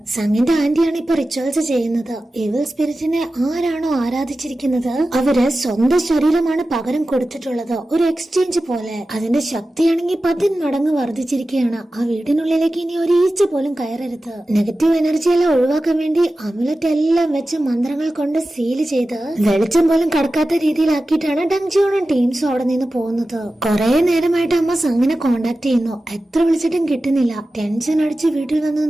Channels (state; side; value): normal; both; correlation 0.94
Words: സംഘിന്റെ ആന്റിയാണ് ഇപ്പൊ റിച്വൽസ് ചെയ്യുന്നത്. ഇവിൽ സ്പിരിറ്റിനെ ആരാണോ ആരാധിച്ചിരിക്കുന്നത് അവര് സ്വന്തം ശരീരമാണ് പകരം കൊടുത്തിട്ടുള്ളത്, ഒരു എക്സ്ചേഞ്ച് പോലെ. അതിന്റെ ശക്തിയാണെങ്കിൽ 10 മടങ്ങ് വർദ്ധിച്ചിരിക്കുകയാണ്. ആ വീടിനുള്ളിലേക്ക് ഇനി ഒരു ഈച്ച പോലും കയറരുത്. നെഗറ്റീവ് എനർജി എല്ലാം ഒഴിവാക്കാൻ വേണ്ടി അമുലറ്റ് എല്ലാം വെച്ച് മന്ത്രങ്ങൾ കൊണ്ട് സീല് ചെയ്ത് വെളിച്ചം പോലും കടക്കാത്ത രീതിയിലാക്കിയിട്ടാണ് ഡങ്ജിയോണും ടീംസും അവിടെ നിന്ന് പോകുന്നത്. കുറെ നേരമായിട്ട് അമ്മ സംഘിനെ കോണ്ടാക്ട് ചെയ്യുന്നു. എത്ര വിളിച്ചിട്ടും കിട്ടുന്നില്ല. ടെൻഷൻ അടിച്ച് വീട്ടിൽ വന്ന്